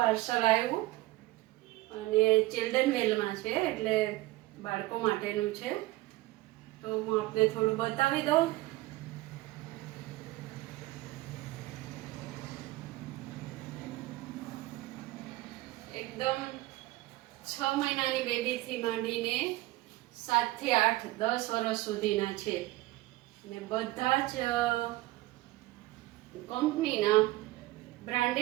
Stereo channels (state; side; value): quieter; left; 18.7 dB